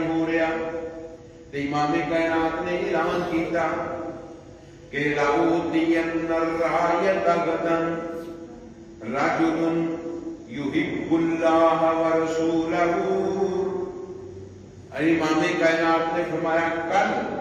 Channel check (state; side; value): identical; both; correlation 1.00